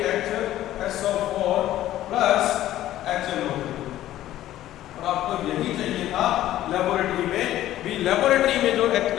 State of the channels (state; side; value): quieter; right; 13.6 dB